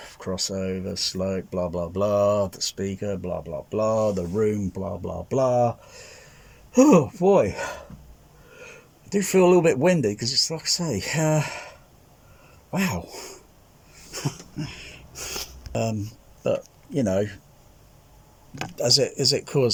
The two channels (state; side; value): identical; both; correlation 1.00